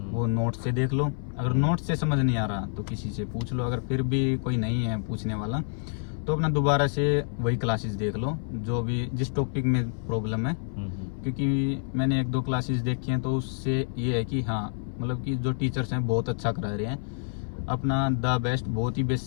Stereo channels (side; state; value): right; silent; 58 dB below the other